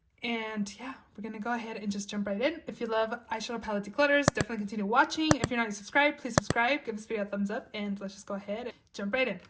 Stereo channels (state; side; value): identical; both; correlation 1.00